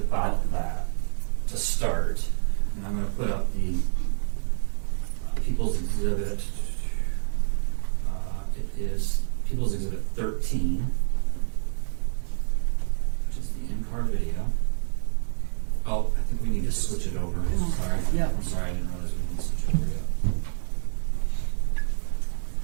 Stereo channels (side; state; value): left; silent; 60 dB below the other